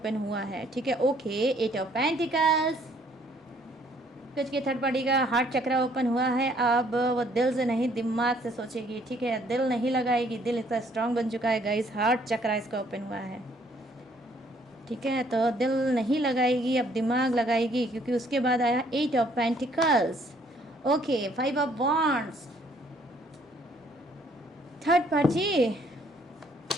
हुआ है, ठीक है? ओके, 8 ऑफ पेंटिकल्स, कुछ के थर्ड पार्टी का हार्ट चक्रा ओपन हुआ है। अब वो दिल से नहीं दिमाग से सोचेगी, ठीक है? दिल नहीं लगाएगी, दिल इसका स्ट्रांग बन चुका है गाइस, हार्ट चक्रा इसका ओपन हुआ है, ठीक है? तो दिल नहीं लगाएगी, अब दिमाग लगाएगी क्योंकि उसके बाद आया 8 of pentacles. Okay, 5 of wands. Third party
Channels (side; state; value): both; normal; correlation 0.64